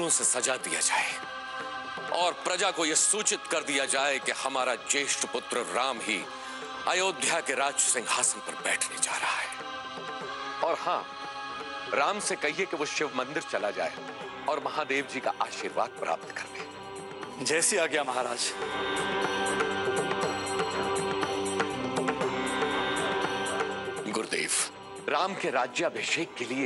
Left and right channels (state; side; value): identical; both; correlation 1.00